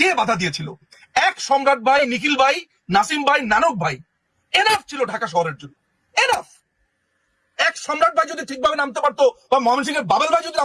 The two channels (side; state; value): both; identical; correlation 1.00